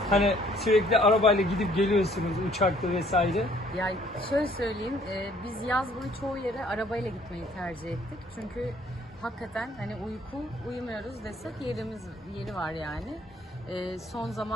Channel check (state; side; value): normal; both; correlation 0.60